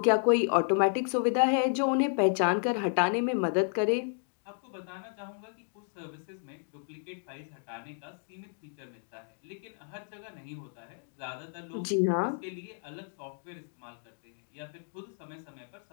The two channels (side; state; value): right; silent; 56 dB below the other